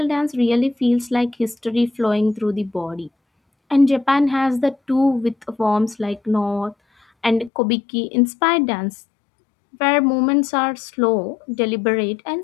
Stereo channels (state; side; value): drops out; right; at 7.5 s